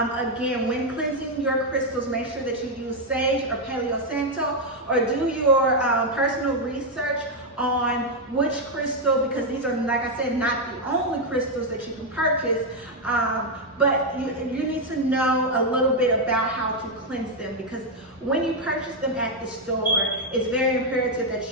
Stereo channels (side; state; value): both; normal; correlation 0.01